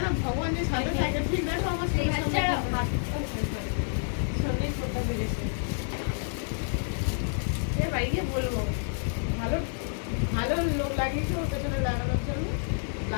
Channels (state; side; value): silent; right; digital silence